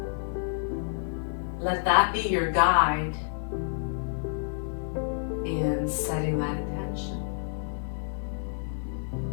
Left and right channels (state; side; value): silent; right; 59 dB below the other